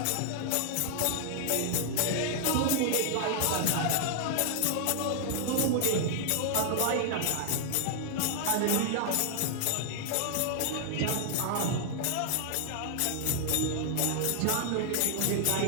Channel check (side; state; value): both; different; correlation 0.00